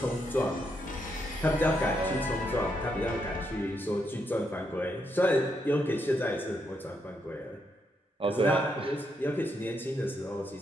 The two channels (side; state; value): both; normal; correlation 0.79